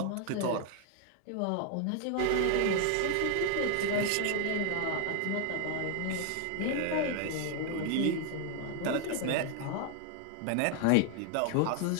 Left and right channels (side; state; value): both; different; correlation 0.00